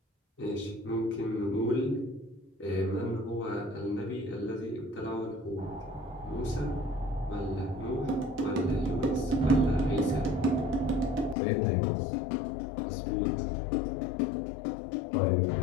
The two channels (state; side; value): drops out; right; at 11.4 s